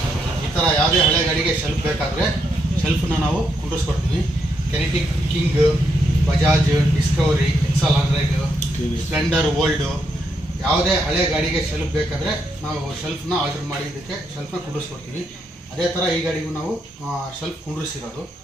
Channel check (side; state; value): both; normal; correlation 0.79